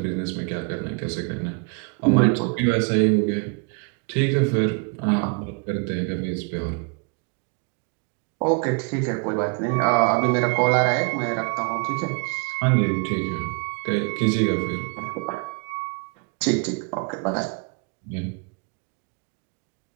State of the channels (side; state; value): left; quieter; 34.6 dB